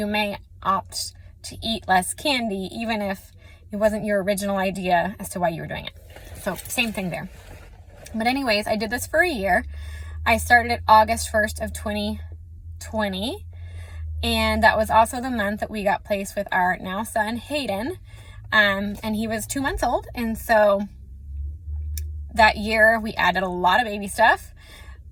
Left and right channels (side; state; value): both; identical; correlation 1.00